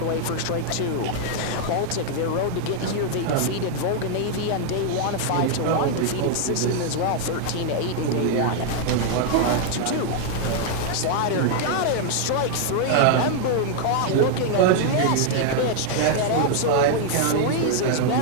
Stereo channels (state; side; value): different; both; correlation 0.00